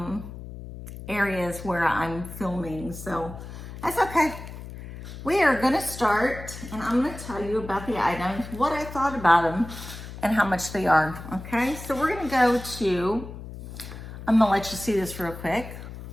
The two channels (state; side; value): noise; left; hum, 12 dB below the sound